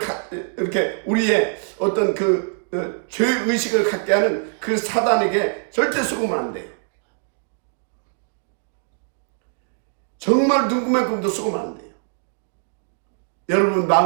이렇게 우리의 어떤 그 죄의식을 갖게 하는 그 사단에게 절대 속으면 안 돼요. 정말 눈구멍만큼도 속으면 안 돼요. 여러분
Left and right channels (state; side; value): silent; left; digital silence